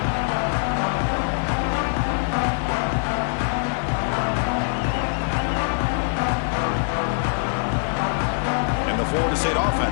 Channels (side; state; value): right; silent; digital silence